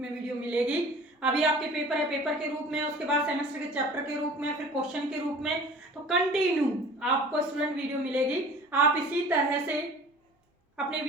वीडियो मिलेगी। अभी आपके पेपर है, पेपर के रूप में, उसके बाद सेमेस्टर के चैप्टर के रूप में, फिर क्वेश्चन के रूप में। तो कंटिन्यू आपको स्टूडेंट वीडियो मिलेगी। आप इसी तरह से अपने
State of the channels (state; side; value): normal; both; correlation 0.45